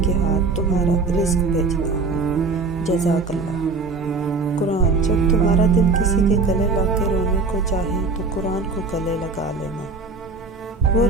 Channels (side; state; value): left; quieter; 4.1 dB